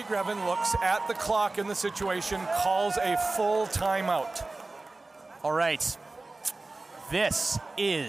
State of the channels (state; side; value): quieter; left; 3.3 dB